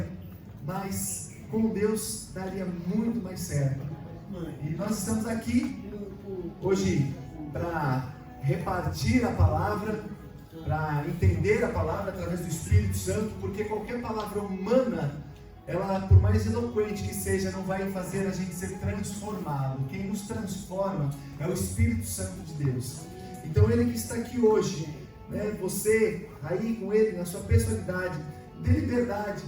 mas com Deus daria muito mais certo. E nós estamos aqui hoje para repartir a palavra, para entender a palavra através do Espírito Santo, porque qualquer palavra humana, ela, por mais eloquente que seja, não vai fazer a gente ser transformado. Quem nos transforma é o Espírito Santo de Deus. Então Ele que está aqui hoje, né? Você aí com Ele, na sua personalidade, dê liberdade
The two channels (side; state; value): both; identical; correlation 1.00